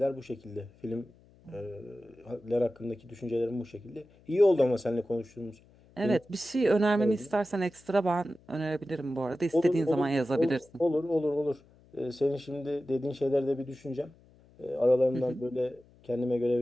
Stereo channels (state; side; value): noise; left; hum, 28 dB below the sound